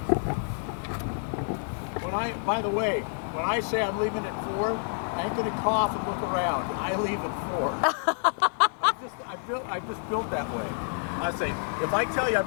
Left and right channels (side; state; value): right; silent; 59 dB below the other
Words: By the way, when I say I'm leaving at 4, I ain't gonna cough and look around. I leave at 4. I just built that way. I say, if I tell you I'm